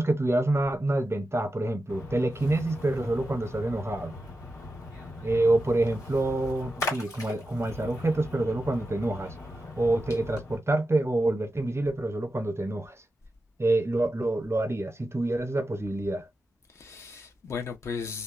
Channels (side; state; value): both; normal; correlation 0.91